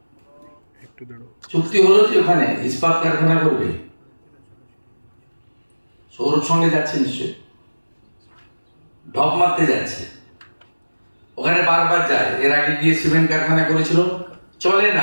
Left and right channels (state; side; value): inverted; both; correlation -1.00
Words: চুক্তি হলো যে ওখানে ইস্পাত কারখানা করবে, সৌরভ সঙ্গে যাচ্ছে নিশ্চয়, ঢপ মারতে যাচ্ছে। ওখানে বারবার যায়, এর আগে গিয়ে সিমেন্ট কারখানা করেছিল, চলে